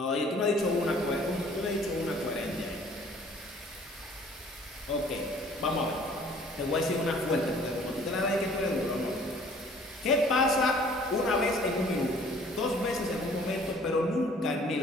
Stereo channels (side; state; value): both; normal; correlation 0.54